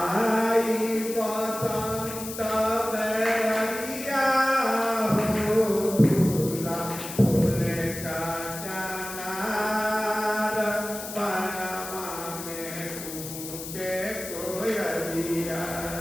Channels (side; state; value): left; noise; hiss, 9 dB below the sound